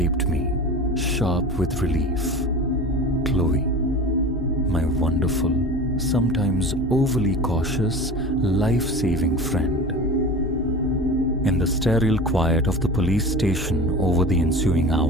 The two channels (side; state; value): both; normal; correlation 0.34